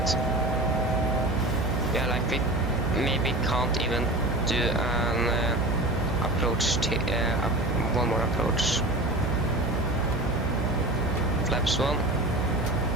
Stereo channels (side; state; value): right; noise; hum, 3 dB below the sound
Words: Yeah, like we maybe can't even do an approach, one more approach. Flaps 1.